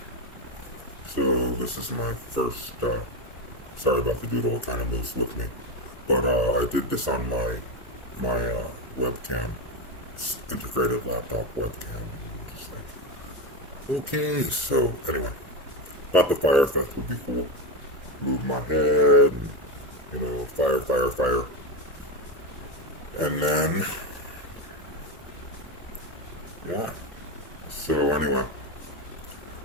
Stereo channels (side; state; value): both; normal; correlation 0.14